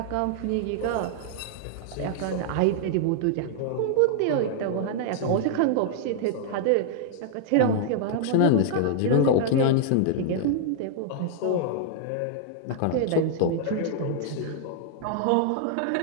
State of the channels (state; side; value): different; both; correlation -0.01